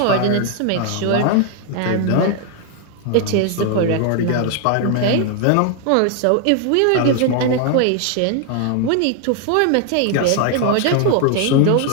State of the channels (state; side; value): different; both; correlation 0.00